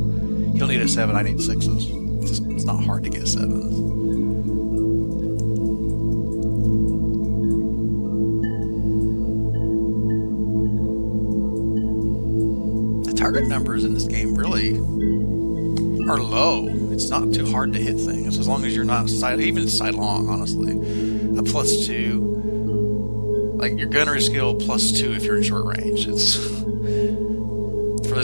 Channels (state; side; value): inverted; both; correlation -1.00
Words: he'll need a 7. I need 6s. It's not hard to get 7s. The target numbers in this game really are low. It's not too hard to hit things as long as you're not even sidelong. Honestly, a +2, like your gunnery skill +2 if you're in short range. It's for